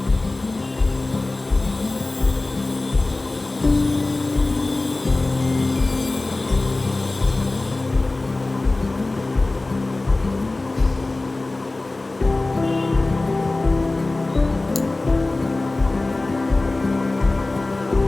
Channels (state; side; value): quieter; right; 3.0 dB